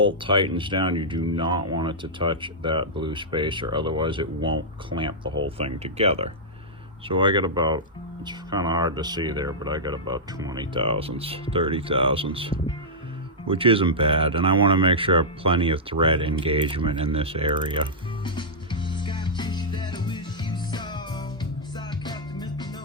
tightens down, you do not want it to touch that blue spacer, otherwise it won't clamp the whole thing together. So I got about, it's kind of hard to see there, but I got about 20 thousandths, 30 thousandths, which isn't bad. And I want to make sure I have plenty of thread engagement in this area.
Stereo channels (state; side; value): normal; both; correlation -0.10